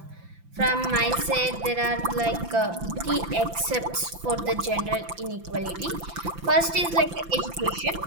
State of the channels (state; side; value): late; left; 5.9 ms